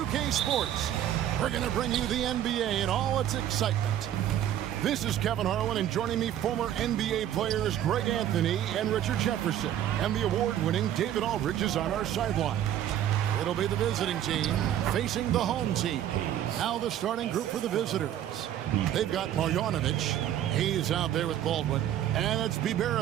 Sports, we're going to bring you the NBA and all its excitement. This is Kevin Harlan, and joining me, former NBA players Greg Anthony and Richard Jefferson, and the award-winning David Aldridge is on our sideline. It'll be the visiting team facing the home team. Now the starting group for the visitors. They've got Marjanovic. He's out there with Baldwin. And it's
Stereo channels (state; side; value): quieter; left; 11.3 dB